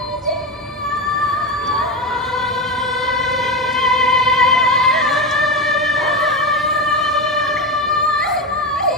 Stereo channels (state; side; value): normal; both; correlation 0.17